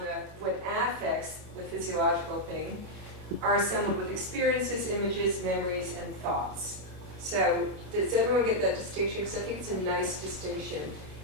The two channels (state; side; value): late; left; 27 ms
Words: when affects, the physiological thing, are assembled with experiences, images, memories, and thoughts. So does everyone get that distinction? Because I think it's a nice distinction.